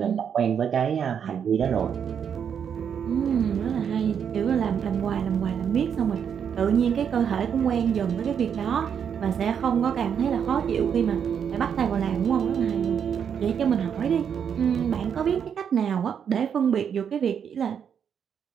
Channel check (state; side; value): quieter; left; 7.8 dB